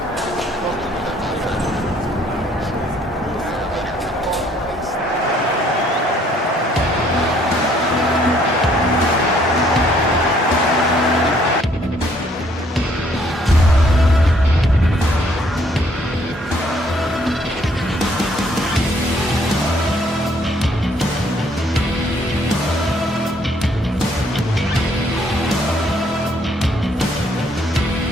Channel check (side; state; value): both; normal; correlation 0.64